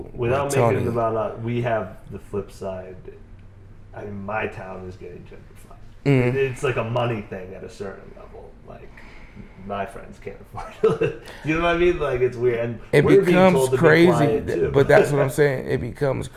Without making it about us, we have the flip side. I mean, my town is getting gentrified. Mm-hmm. It's like a money thing at a certain level. Like, my friends can't afford it. You know what I mean? Like, it's weird. And it becomes crazy, too. But that's what I'm saying. It becomes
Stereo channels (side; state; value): both; identical; correlation 1.00